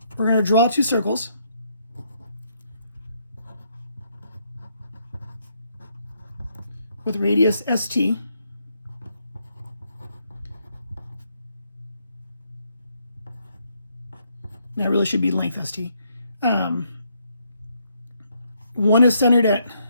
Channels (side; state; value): both; inverted; correlation -0.73